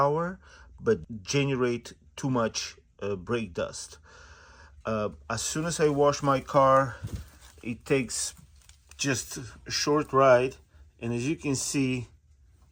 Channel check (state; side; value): identical; both; correlation 1.00